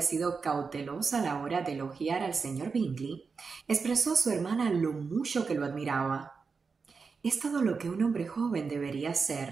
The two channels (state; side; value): quieter; left; 5.0 dB